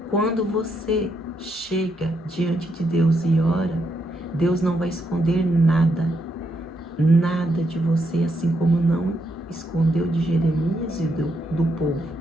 quando você chega diante de Deus e ora, Deus não vai esconder nada de você, assim como não escondeu de Jeremias e do povo.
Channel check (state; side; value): normal; both; correlation 0.78